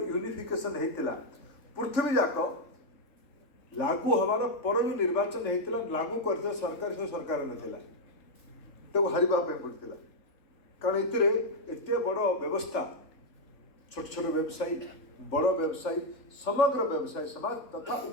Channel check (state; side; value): late; right; 3.3 ms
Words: होता पृथ्वी जाक लागू हमार पर जो निर्वाचन होता लागू कर सरकार से सरकार नाला तो हारवाई पड़ता कारण एत बड़ व्यवस्था छोट छोट व्यवसायी बड़ व्यवसायी समग्र व्यवसायी समाज तथा